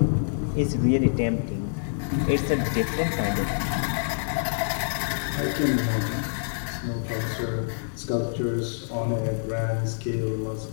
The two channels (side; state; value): right; silent; digital silence